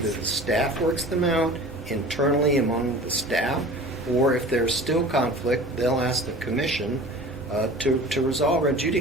the staff works them out internally among the staff, or if there's still conflict, they'll ask the commission to resolve or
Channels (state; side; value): normal; both; correlation 0.40